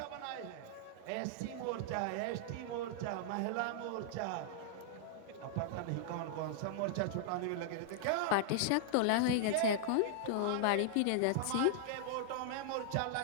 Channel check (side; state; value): both; different; correlation -0.01